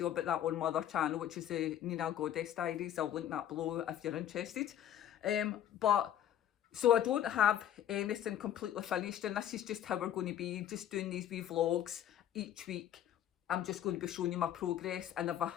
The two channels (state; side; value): quieter; right; 10.9 dB